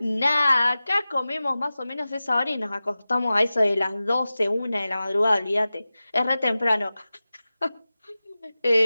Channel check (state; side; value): inverted; both; correlation -0.96